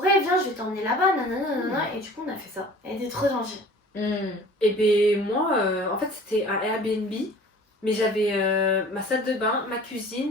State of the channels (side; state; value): both; normal; correlation 0.46